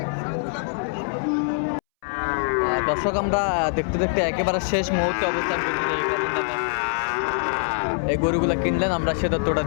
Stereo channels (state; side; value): silent; right; 63 dB below the other